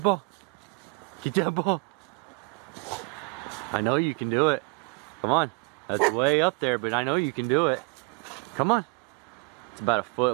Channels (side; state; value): left; quieter; 30.5 dB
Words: ball. Get that ball. I know you can do it. Come on. That's way up there, but I know you can do it. Come on. It's about a foot